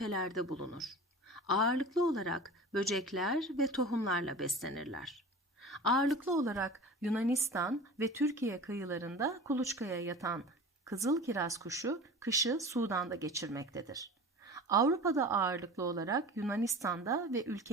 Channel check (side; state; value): both; normal; correlation 0.36